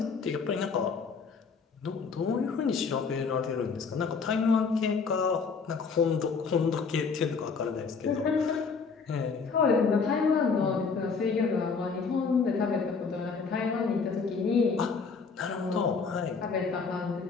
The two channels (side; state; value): right; quieter; 5.1 dB